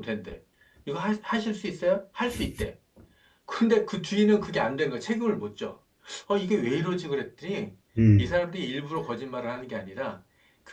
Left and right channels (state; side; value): identical; both; correlation 1.00